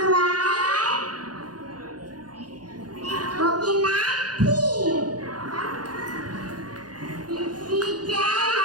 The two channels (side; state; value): left; late; 0.69 ms